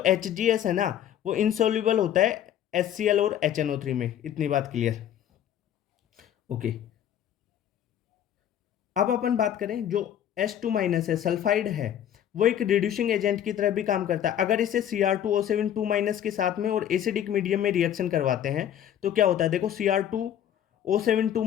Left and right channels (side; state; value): right; quieter; 10.3 dB